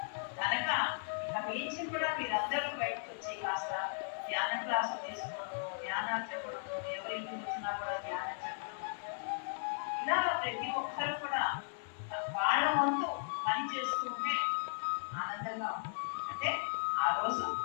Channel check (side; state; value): right; silent; 53 dB below the other